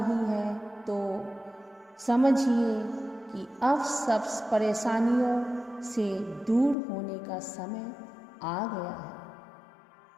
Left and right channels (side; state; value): right; drops out; at 6.8 s